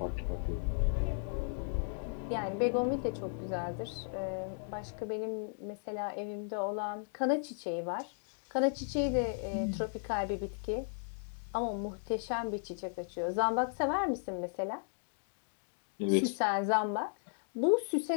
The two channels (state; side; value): silent; right; digital silence